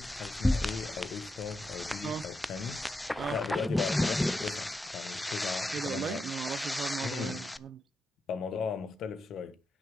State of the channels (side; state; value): both; normal; correlation 0.87